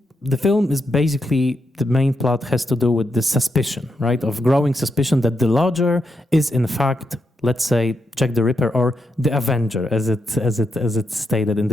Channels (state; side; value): normal; both; correlation 0.83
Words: the film is basically, the main plot has to do with the suspicion, right? Of growing suspicion that the lodger is in fact, let's say, Jack the Ripper or the Avenger, as it's stated in